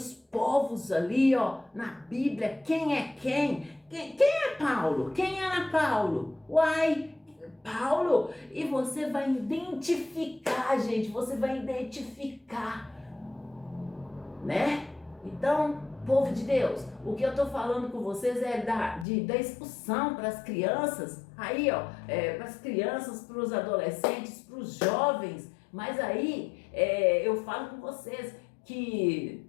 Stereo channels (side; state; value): right; drops out; at 19.1 s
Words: povos ali, ó, na Bíblia, quem é quem é Paulo, quem era Paulo, Paulo, e você vai identificar, gente, né? Então, povo de Deus, o que eu tô falando com vocês é da expulsão para as crianças, aí ó, para as crianças, para os adolescentes, para os jovens, mas aí eu falo com vocês